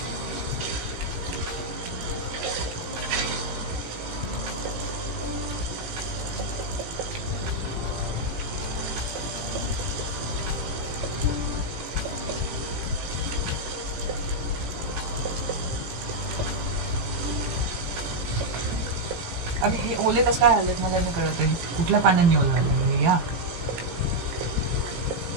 अरे हे ओले कसं काय आलेत मला नाही कळत आहे. कुठल्या पाण्याने ओलं आलं या?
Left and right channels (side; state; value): left; late; 18 ms